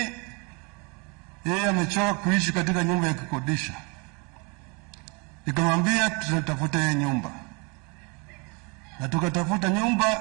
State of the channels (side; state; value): left; quieter; 31.1 dB